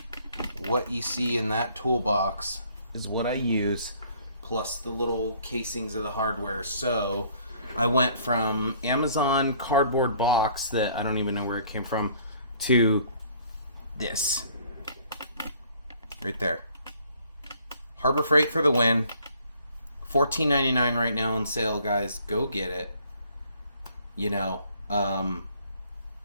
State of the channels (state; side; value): inverted; both; correlation -0.59